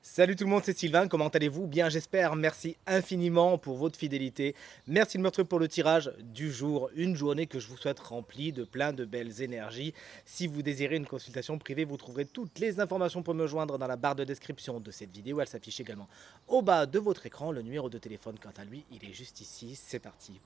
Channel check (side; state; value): left; quieter; 7.1 dB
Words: Salut tout le monde, c'est Sylvain, comment allez-vous? Bien j'espère, merci infiniment pour votre fidélité. Merci de me retrouver pour le tirage du jour, une journée que je vous souhaite remplie de plein de belles énergies. Si vous désirez une consultation privée, vous trouverez toutes les informations pour me joindre dans la barre de description de cette vidéo. Elle s'affiche également au bas de votre écran. Le numéro de téléphone, quant à lui, il est juste ici. C'est parti,